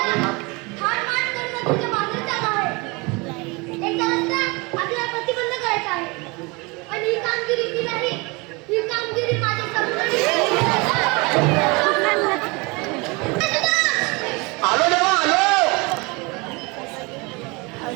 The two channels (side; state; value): left; quieter; 26.7 dB